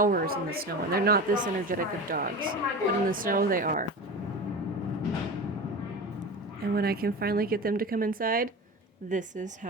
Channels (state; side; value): normal; both; correlation 0.29